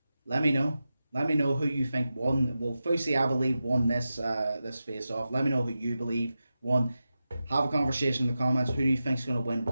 Let me know. Let me know who you think won. Well, Fousey, I believe, won this face-off. Let me know who you believe won. Have a conversation in the comments. Who do you think is going to win?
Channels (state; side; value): inverted; both; correlation -0.92